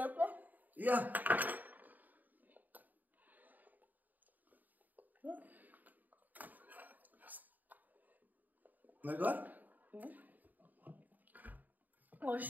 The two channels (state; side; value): late; left; 0.084 ms